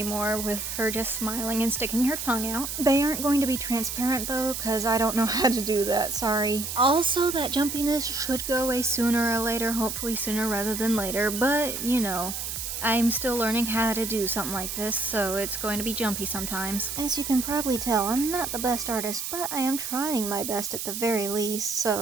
with her just smiling and sticking her tongue out. They aren't going to be transparent though, because I don't know how to do that, sorry. Also, that jumpiness should go away sooner or later, hopefully sooner rather than later, but you know. I'm still learning how to do something like this, so it's going to be jumpy sometimes. As you can probably tell, I'm not the best artist, but I am trying my best at the very least,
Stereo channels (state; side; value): noise; right; hiss, 5 dB below the sound